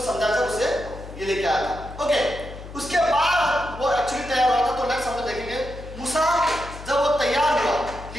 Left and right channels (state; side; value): noise; left; hum, 13 dB below the sound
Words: समझाकर उसे ये लेके आया था। ओके, उसके बाद वो एक्चुअली तैयार हुआ था। तो नेक्स्ट हम लोग देखेंगे मूसा जब वो तैयार हुआ